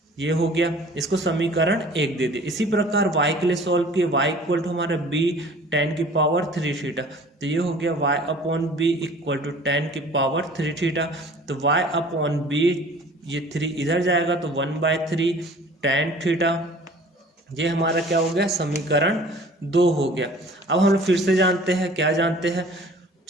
ये हो गया, इसको समीकरण 1 दे दिए। इसी प्रकार y के लिए सॉल्व किए, y इक्वल टू हमारा b टेन की पावर 3 थीटा, तो ये हो गया y upon b equal to tan की पावर 3 थीटा। तो y अपॉन बी, ये 3 इधर जाएगा तो 1/3 tan थीटा। ये हमारा क्या हो गया, समीकरण 2 हो गया। अब हम लोग फिर से जानते हैं, क्या जानते हैं,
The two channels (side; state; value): both; normal; correlation 0.48